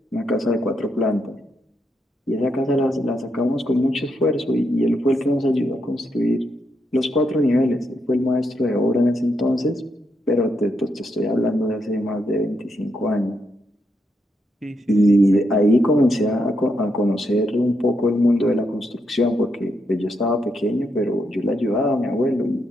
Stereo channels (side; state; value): both; normal; correlation 0.80